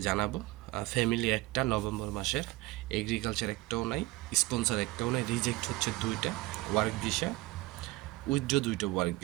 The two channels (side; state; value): left; quieter; 20.2 dB